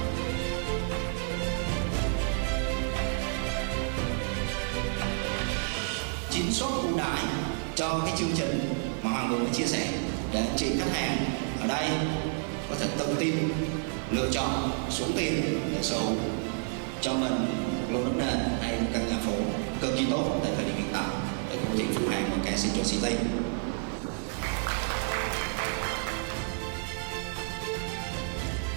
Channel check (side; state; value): left; silent; 58 dB below the other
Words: Chính suất ưu đãi cho cái chương trình mà Hoàng vừa mới chia sẻ để anh chị khách hàng ở đây có thể tự tin lựa chọn số tiền để sở hữu cho mình một lô đất nền hay một căn nhà phố cực kỳ tốt tại thời điểm hiện tại để công ty Phú Hàng và cả Central City.